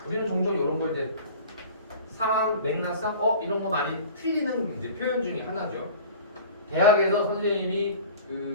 우리는 종종 이런 거 이제 상황 맥락상 이런 거 많이 틀리는 이제 표현 중에 하나죠. 대학에서 선생님이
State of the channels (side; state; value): both; inverted; correlation -0.41